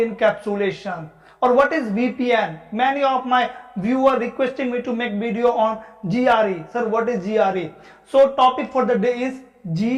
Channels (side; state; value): both; identical; correlation 1.00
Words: or what is VPN. Many of my viewers requesting me to make video on GRE. Sir, what is GRE? So topic for the day is